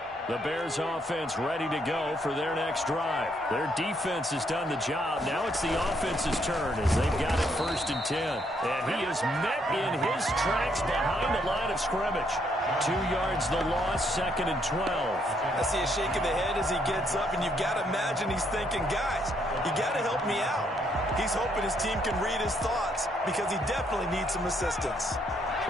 The Bears offense ready to go for their next drive. Their defense has done the job. Now it's the offense's turn as they've got it 1st and 10. And he is met in his tracks behind the line of scrimmage. 2 yards the loss, 2nd and 12. I see a shake of the head as he gets up, and you've got to imagine he's thinking, guys, you got to help me out. He's hoping his team can read his thoughts because he definitely needs some assistance.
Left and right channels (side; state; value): both; normal; correlation 0.72